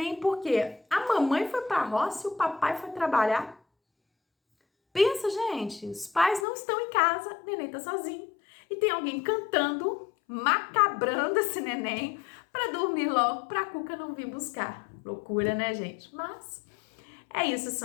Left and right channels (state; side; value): drops out; right; at 6.5 s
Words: Por quê? A mamãe foi pra roça e o papai foi trabalhar. Pensa, gente, os pais não estão em casa, o neném tá sozinho. E tem alguém cantando, macabrando esse neném pra dormir logo, pra Cuca não vir buscar. Loucura, né, gente? Mas é isso,